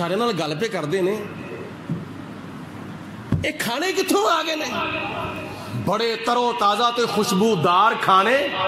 نال گل پہ کردے نے, اے کھانے کتھوں آ گئے نے, بڑے ترو تازہ تے خوشبودار کھانے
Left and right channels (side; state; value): both; identical; correlation 1.00